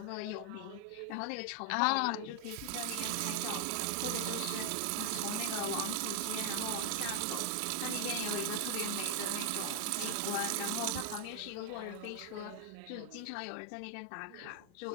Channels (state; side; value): different; both; correlation 0.00